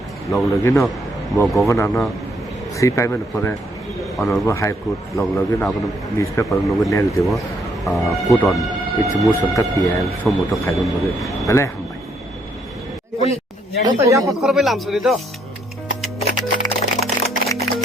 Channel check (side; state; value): both; normal; correlation 0.71